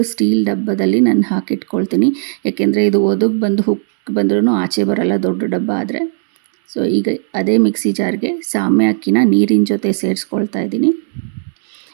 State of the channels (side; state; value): left; silent; 70 dB below the other